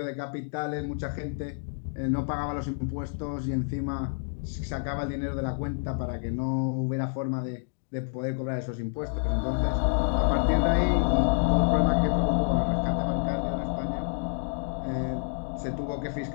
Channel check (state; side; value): silent; right; digital silence